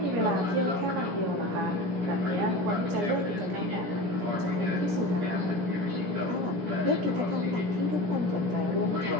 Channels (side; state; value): left; late; 17 ms